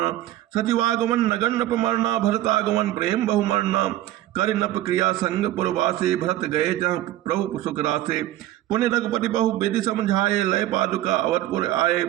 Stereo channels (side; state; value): left; quieter; 14.5 dB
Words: सचिवागमन नगन नप मरना भरतागमन प्रेम बहुमरना। कर नप क्रिया संग पुरवासे भरत गए जहाँ प्रभु सुख रासे। पुण्य रघुपति बहु विधि समझाए लय पादुका अवधपुर आए।